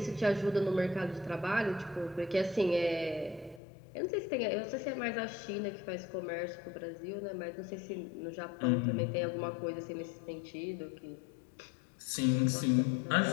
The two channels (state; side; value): drops out; right; at 3.6 s